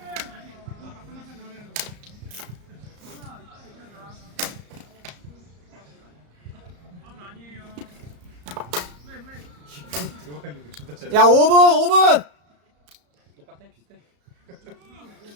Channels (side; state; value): left; late; 34 ms